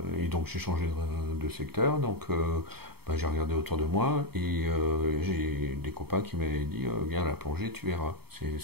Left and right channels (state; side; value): late; left; 0.96 ms